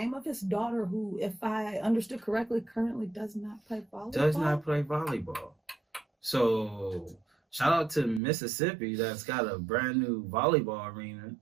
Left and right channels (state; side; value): drops out; left; at 8.2 s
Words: of his daughter, who, if I understood correctly, currently does not play volleyball. So shout out to Mississippi that's got a brand new volleyball arena.